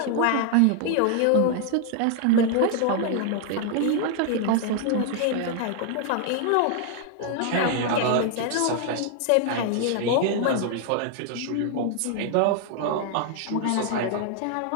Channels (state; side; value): different; both; correlation 0.00